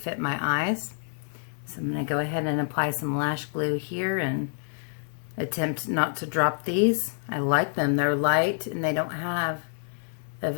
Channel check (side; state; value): right; silent; 60 dB below the other